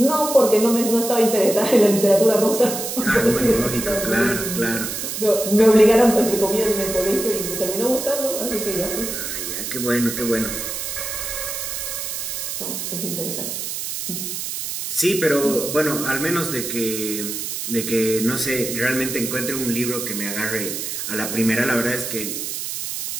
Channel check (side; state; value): right; noise; hiss, 5 dB below the sound